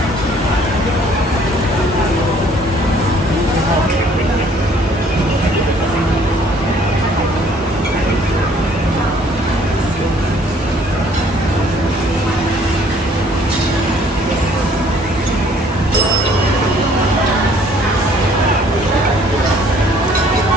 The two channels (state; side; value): normal; both; correlation 0.59